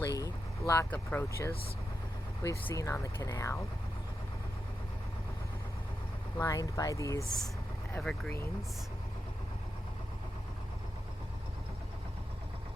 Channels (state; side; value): normal; both; correlation 0.88